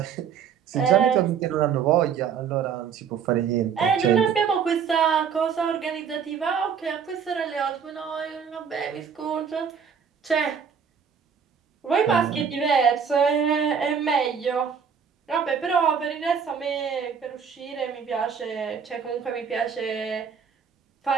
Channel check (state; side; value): quieter; left; 7.0 dB